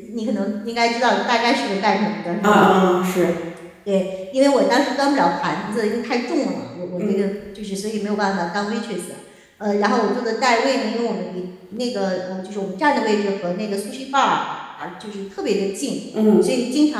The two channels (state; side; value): identical; both; correlation 1.00